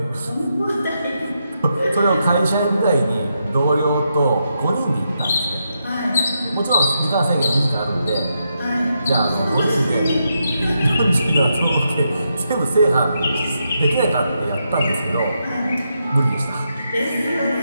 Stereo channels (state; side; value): inverted; both; correlation -0.83